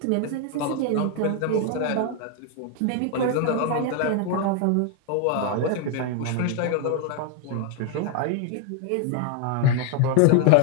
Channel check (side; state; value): both; different; correlation 0.00